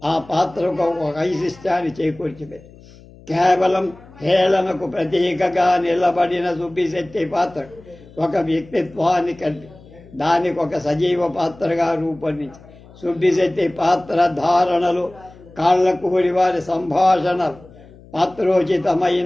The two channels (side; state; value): left; noise; hum, 22 dB below the sound